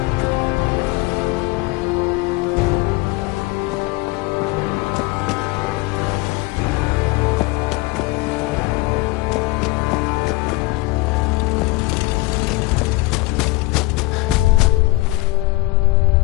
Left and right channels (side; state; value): right; quieter; 20.4 dB